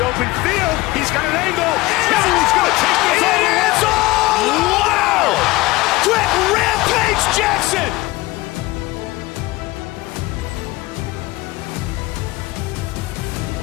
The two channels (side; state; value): right; quieter; 20.3 dB